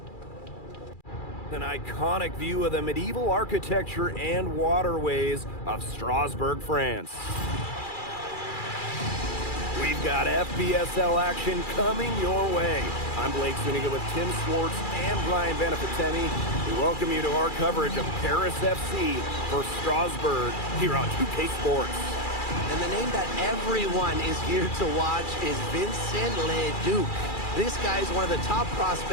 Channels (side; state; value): right; late; 2.4 ms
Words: An iconic view of the medieval architecture and waterways of Strasbourg, France. We've got FPSL action coming your way. I'm Blake Zuniga with Tim Swartz and Brian Benefitemi. We welcome you to our coverage of Paris FC for Strasbourg here on 2K Sports. And the name that everyone is here to watch is Vincent Leduc. This guy is one of the top